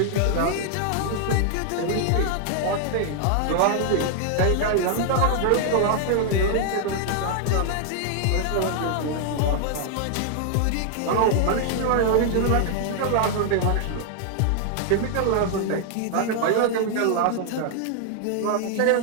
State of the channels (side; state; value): both; different; correlation 0.00